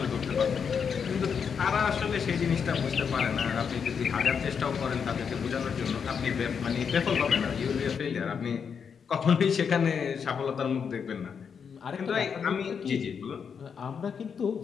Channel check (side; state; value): right; quieter; 6.7 dB